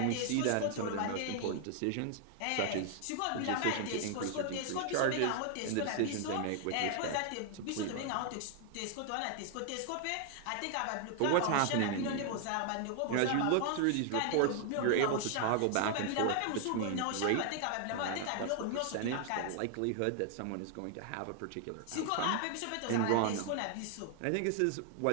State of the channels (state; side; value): different; both; correlation 0.00